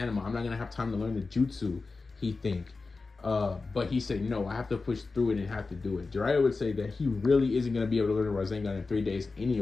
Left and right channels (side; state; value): right; quieter; 4.0 dB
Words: I'm not gonna have time to learn the jutsu." He think, but he said, "No, I have to push through it and have to do it." Jiraiya would say that he really isn't gonna be able to learn the Rasengan in 3 days,